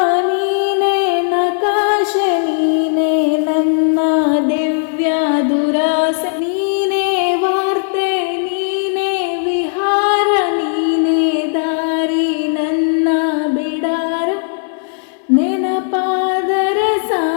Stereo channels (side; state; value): right; silent; digital silence